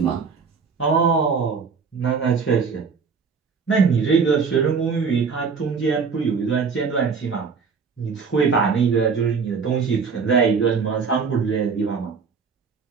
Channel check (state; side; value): quieter; left; 5.5 dB